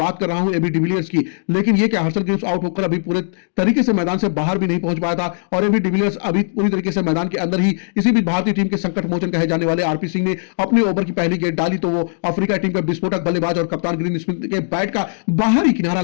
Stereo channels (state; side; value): silent; right; digital silence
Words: कर रहा हूं एबी डिविलियर्स की। लेकिन यह क्या हर्षल ग्रब्स आउट होकर अभी पूरे तरीके से मैदान से बाहर भी नहीं पहुंच पाया था, और एबी डिविलियर्स अभी पूरी तरीके से मैदान के अंदर ही। इसी बीच भारतीय टीम के संकट मोचन कहे जाने वाले आरपी सिंह ने अपने ओवर की पहली गेंद डाली तो वो अफ्रीका टीम का विस्फोटक बल्लेबाज और कप्तान ग्रीन स्मिथ के बैट का बाहरी किनारा